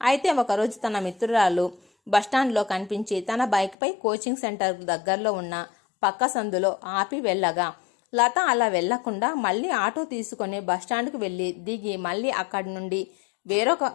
అయితే ఒకరోజు తన మిత్రురాలు బస్టాండ్లో కనిపించి తన బైక్పై కోచింగ్ సెంటర్ దగ్గరలో ఉన్న పక్క సందులో ఆపి వెళ్ళగా లత అలా వెళ్లకుండా మళ్ళీ ఆటో తీసుకొని బస్టాండ్కు వెళ్ళి దిగి మళ్ళీ అక్కడి నుండి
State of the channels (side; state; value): right; drops out; at 3.8 s